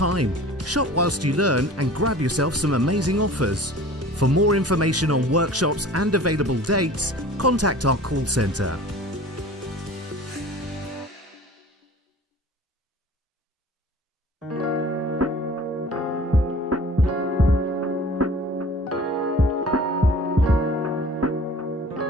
Shop whilst you learn and grab yourself some amazing offers. For more information on workshops and available dates, contact our call centre.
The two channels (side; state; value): both; normal; correlation 0.44